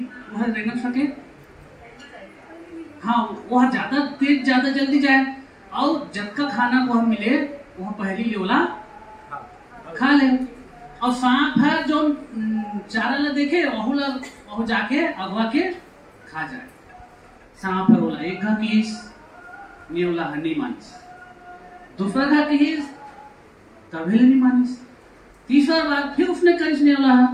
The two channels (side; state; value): both; identical; correlation 1.00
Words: वह रेंगन सके, हाँ वह ज्यादा तेज ज्यादा जल्दी जाए और जब का खाना वह मिले वह पहली नेवला खा ले। और सांप है जो चारा ला देखे वह जाके अगवा के खा जाए। सांप है बोला एक घा कीस, नेवला है नहीं मानिस। दूसरा घा कीस, कभी नहीं मानिस। तीसरा बार फिर उसने करीस नेवला है,